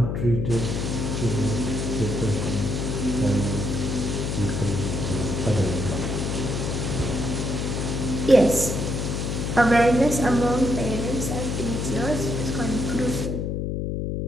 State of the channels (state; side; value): noise; left; hum, 1 dB below the sound